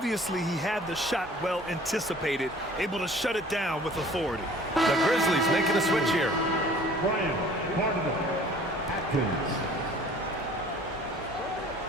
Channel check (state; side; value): normal; both; correlation 0.50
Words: he had the shot well anticipated, able to shut it down with authority. The Grizzlies making a switch here. Brian Barnabas Atkins.